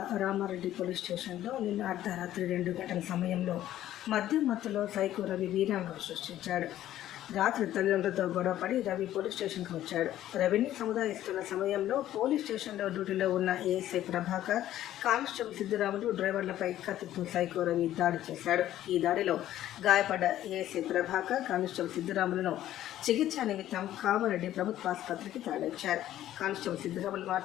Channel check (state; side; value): quieter; right; 12.9 dB